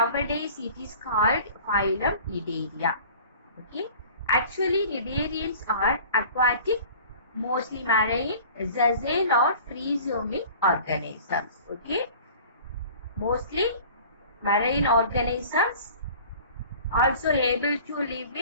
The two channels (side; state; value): both; inverted; correlation -0.45